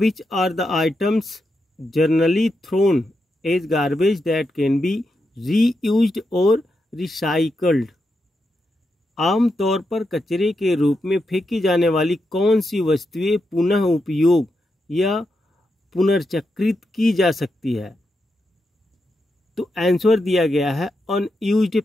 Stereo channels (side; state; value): both; normal; correlation 0.85